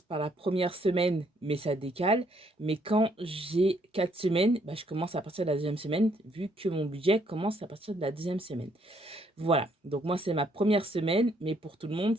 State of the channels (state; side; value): normal; both; correlation 0.69